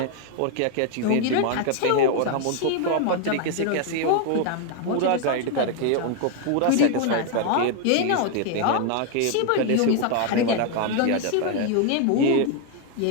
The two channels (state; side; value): different; both; correlation 0.00